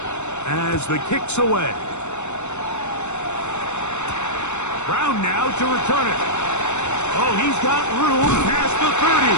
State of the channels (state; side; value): late; right; 0.82 ms